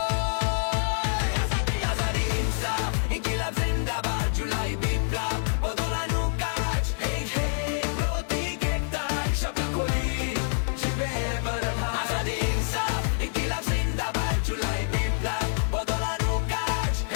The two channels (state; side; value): silent; right; digital silence